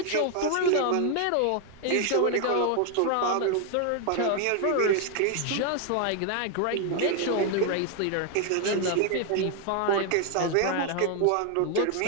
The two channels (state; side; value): different; both; correlation 0.01